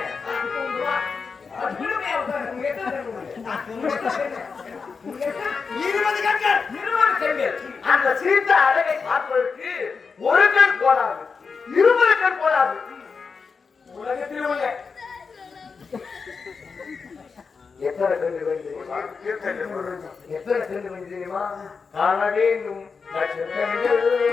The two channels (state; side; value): quieter; right; 5.2 dB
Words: பெண்கள் அந்த சீதா அழகை பார்ப்பதற்கு ஒரு கண் போதாது, 20 கண் போதாது. உலகத்தில் உள்ள எத்தனை கண்டு தெரியுமா? காண வேண்டும்